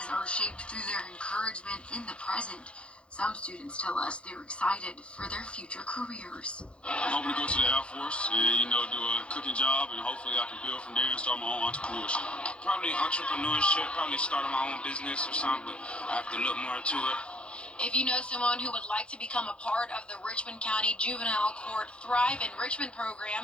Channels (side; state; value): right; late; 0.058 ms